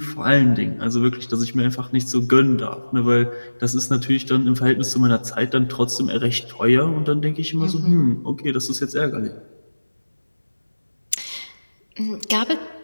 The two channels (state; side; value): inverted; both; correlation -1.00